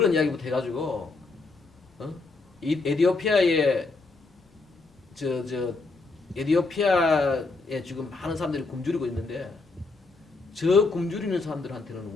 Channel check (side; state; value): right; quieter; 3.8 dB